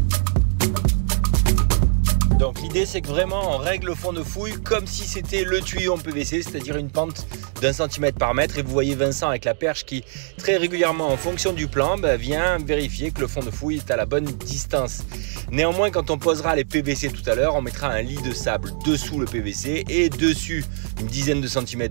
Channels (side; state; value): left; silent; 60 dB below the other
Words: Donc l'idée c'est que vraiment on règle le fond de fouille comme si c'était le tuyau en PVC, c'est-à-dire une pente d'1 cm par mètre. Et vous voyez Vincent avec la perche qui très régulièrement en fonction du plan vient vérifier que le fond de fouille est à la bonne distance. Néanmoins, quand on posera les PVC tout à l'heure, on mettra un lit de sable dessous le PVC et dessus une dizaine de